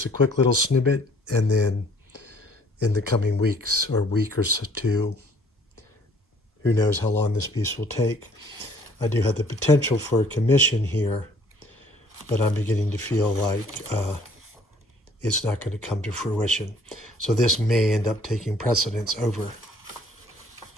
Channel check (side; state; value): both; normal; correlation 0.58